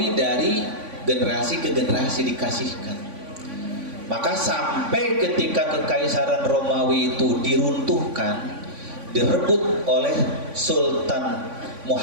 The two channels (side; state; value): left; late; 3.5 ms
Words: dari generasi ke generasi dikasihkan. Maka sampai ketika kekaisaran Romawi itu diruntuhkan, direbut oleh Sultan